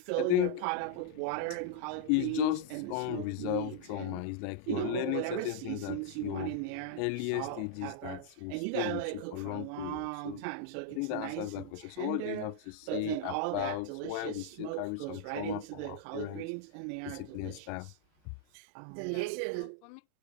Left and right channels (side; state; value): both; different; correlation -0.01